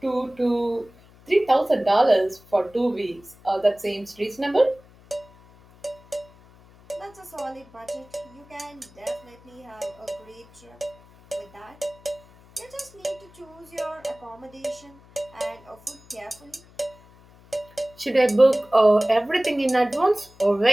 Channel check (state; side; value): noise; left; hum, 25 dB below the sound